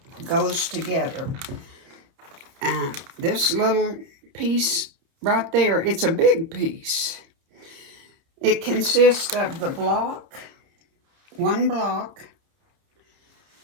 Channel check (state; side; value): late; left; 30 ms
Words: goes together. This little piece right there, it's a big piece. It consists of the block, one